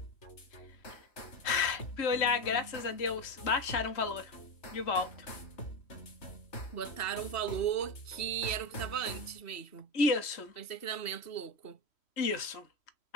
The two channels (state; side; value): late; right; 3.1 ms